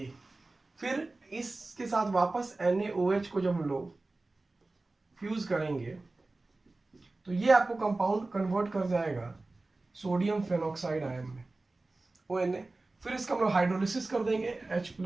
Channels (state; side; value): quieter; left; 3.2 dB